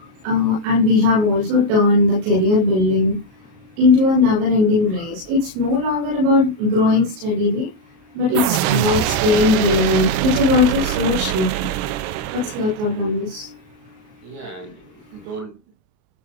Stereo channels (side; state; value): left; late; 38 ms